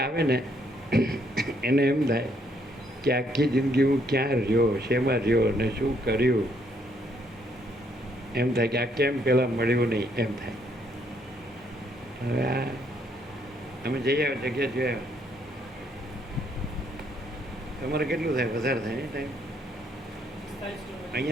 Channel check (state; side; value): normal; both; correlation 0.70